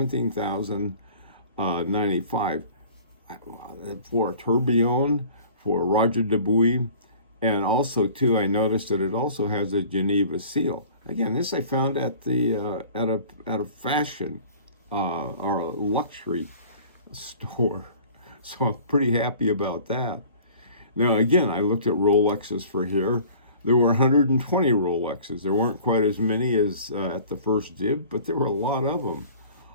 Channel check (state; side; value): inverted; both; correlation -0.47